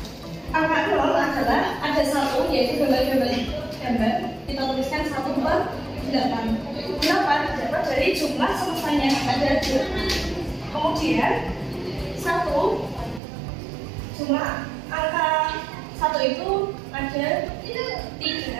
0 adalah ada 1, yaitu gambar. Kita tuliskan 1 per 8. 8 dapat dari jumlah semestanya ada 2. Kemudian 1, jumlah angka 1 itu ada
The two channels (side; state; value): left; drops out; at 13.2 s